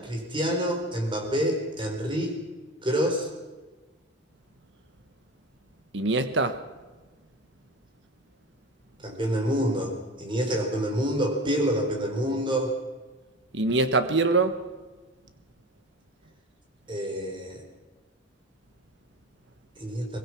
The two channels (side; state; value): both; normal; correlation 0.33